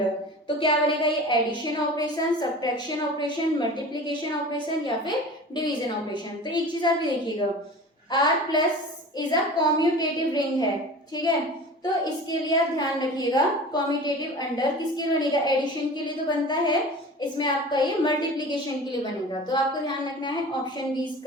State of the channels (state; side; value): normal; both; correlation 0.37